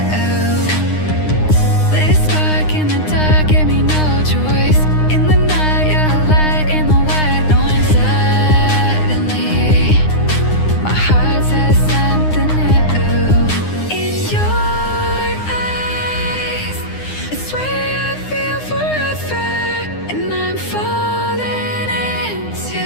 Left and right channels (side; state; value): right; late; 9.7 ms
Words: Lit a spark in the dark, gave me no choice. In the night, you're a light in the white noise. Suddenly, my heart says something new. In your eyes, I swear I feel forever, and I'm falling into